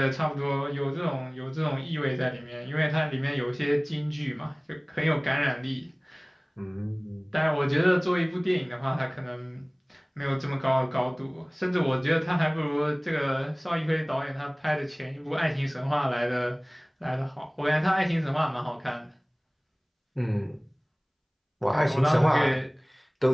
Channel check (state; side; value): identical; both; correlation 1.00